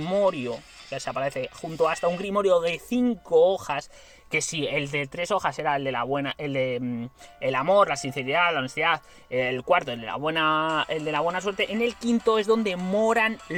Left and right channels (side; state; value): both; identical; correlation 1.00